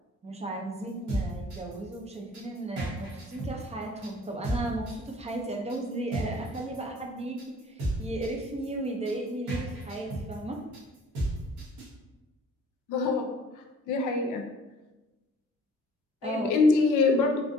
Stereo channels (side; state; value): both; normal; correlation 0.52